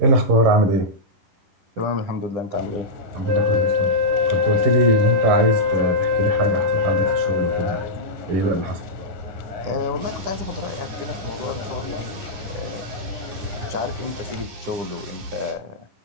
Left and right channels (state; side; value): late; left; 11 ms